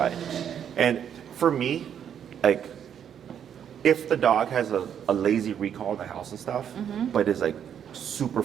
And for me, like, if the dog has a lazy recall in the house and stuff, but is like super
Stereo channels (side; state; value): left; quieter; 8.8 dB